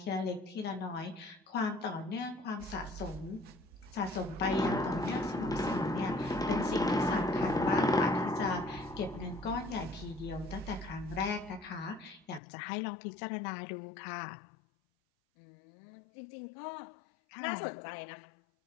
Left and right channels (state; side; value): drops out; right; at 12.4 s